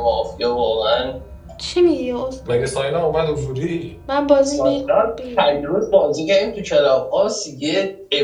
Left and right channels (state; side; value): identical; both; correlation 1.00